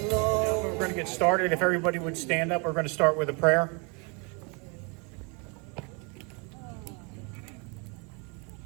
going to get started. If everybody would stand up, we're going to start with a prayer.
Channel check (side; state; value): left; quieter; 33.1 dB